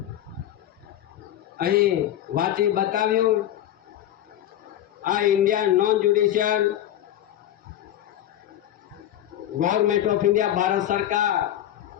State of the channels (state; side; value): quieter; right; 12.0 dB